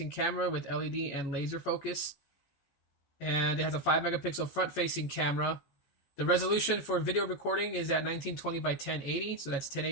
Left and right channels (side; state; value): right; late; 14 ms